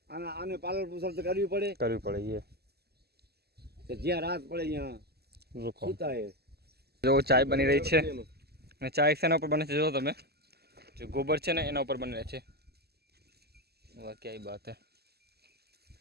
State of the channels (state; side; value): late; left; 0.46 ms